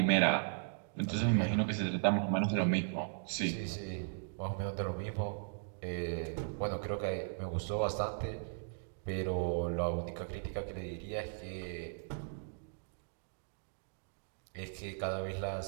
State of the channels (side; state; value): left; silent; digital silence